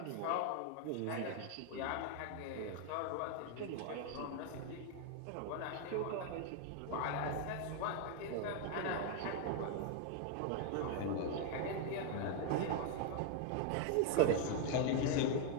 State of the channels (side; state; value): both; different; correlation 0.00